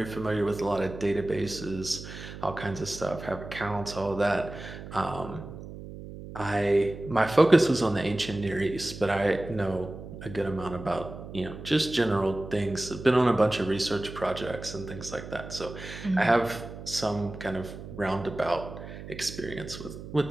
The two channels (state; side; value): noise; right; hum, 12 dB below the sound